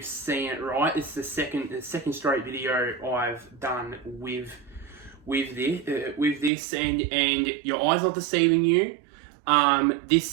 seen it right. It's the second straight video I've done with this, and your eyes are deceiving you.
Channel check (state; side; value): drops out; left; at 6.5 s